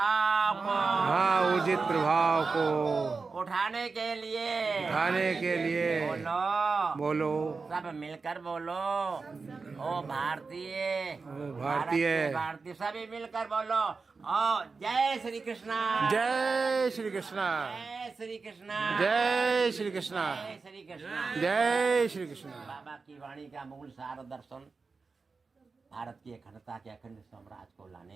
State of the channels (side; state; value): left; quieter; 4.4 dB